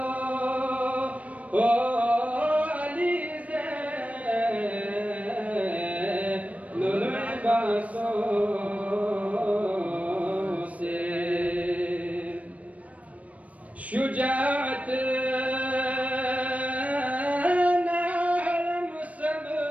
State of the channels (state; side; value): late; left; 0.067 ms